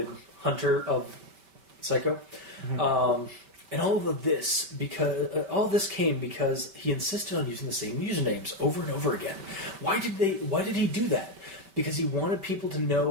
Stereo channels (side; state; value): left; late; 5.2 ms